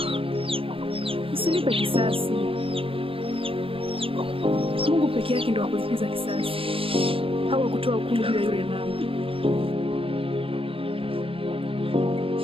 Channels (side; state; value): left; late; 0.27 ms